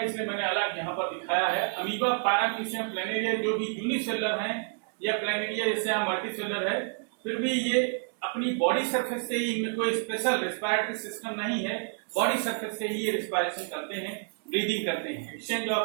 इसलिए मैंने अलग यहाँ पर दिखाया है। अमीबा, पैरामीशियम, प्लैनेरिया जो भी यूनिसेलुलर हैं, या प्लैनेरिया जैसे यहाँ मल्टीसेलुलर है, फिर भी ये अपनी बॉडी सरफेस से ही, इनमें कोई स्पेशल रेस्पिरेटरी सिस्टम नहीं है, बॉडी सरफेस से ही ये रेस्पिरेशन करते हैं, ब्रीदिंग करते हैं, एक्सचेंज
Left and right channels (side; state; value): left; silent; 58 dB below the other